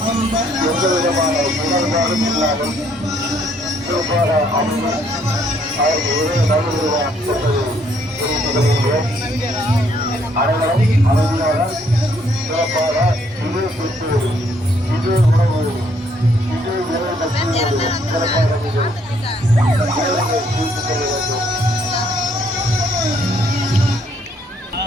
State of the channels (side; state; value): both; normal; correlation 0.67